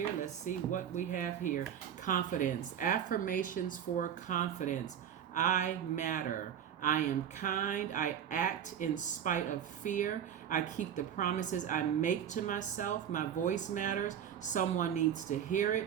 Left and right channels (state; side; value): quieter; left; 9.2 dB